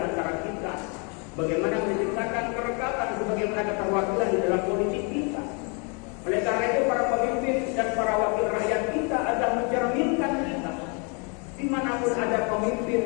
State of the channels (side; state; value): right; quieter; 35.1 dB